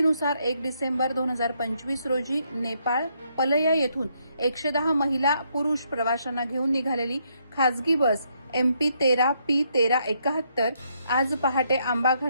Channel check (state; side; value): inverted; both; correlation -0.74